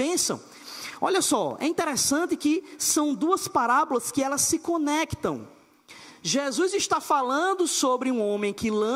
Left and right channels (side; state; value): both; identical; correlation 1.00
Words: Olha só, é interessante que são duas parábolas que elas se conectam. Jesus está falando sobre um homem que